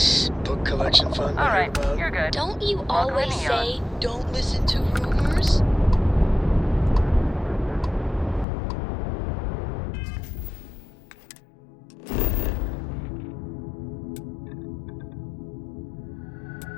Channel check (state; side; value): drops out; right; at 8.5 s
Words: book collection fund I heard about? You're good. Don't you Welcome to always Neon. say, don't listen to rumors?